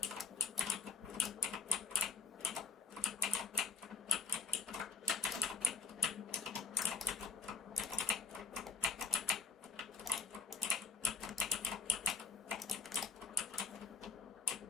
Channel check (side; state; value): right; quieter; 4.7 dB